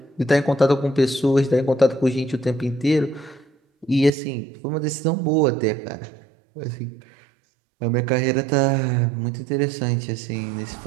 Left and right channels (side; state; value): left; drops out; at 4.1 s